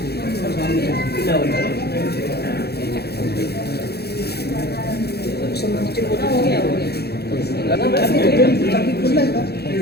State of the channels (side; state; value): right; late; 0.47 ms